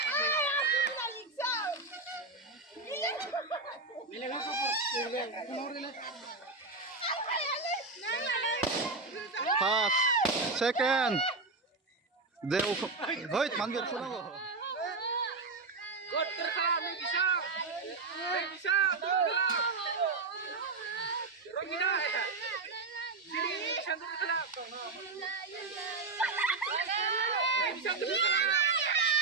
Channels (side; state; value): left; quieter; 3.9 dB